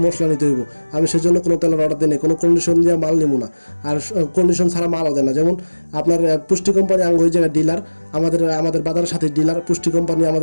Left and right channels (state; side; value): inverted; both; correlation -1.00